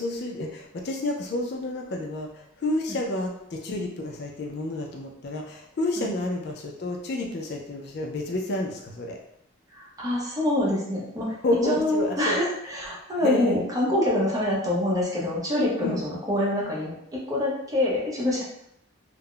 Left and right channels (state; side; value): normal; both; correlation 0.41